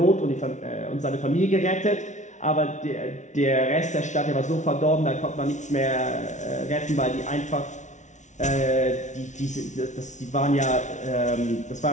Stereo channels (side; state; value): right; late; 0.35 ms